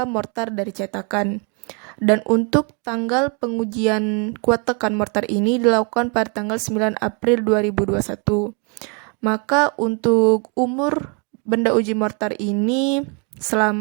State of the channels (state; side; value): quieter; left; 34.0 dB